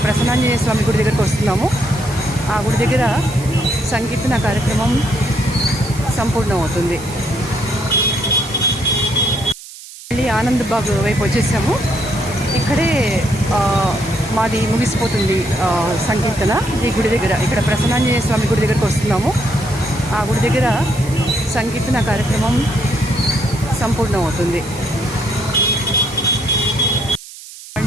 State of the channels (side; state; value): right; noise; hiss, 16 dB below the sound